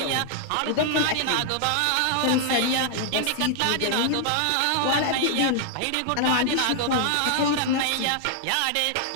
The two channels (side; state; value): both; different; correlation -0.01